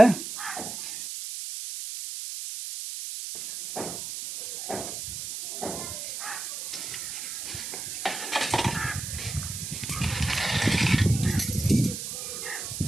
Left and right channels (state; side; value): noise; right; hiss, 6 dB below the sound